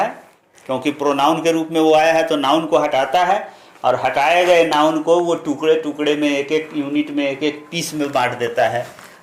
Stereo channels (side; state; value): both; identical; correlation 1.00